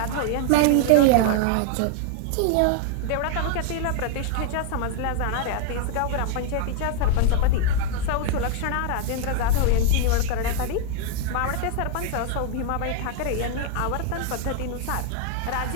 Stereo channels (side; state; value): both; different; correlation 0.00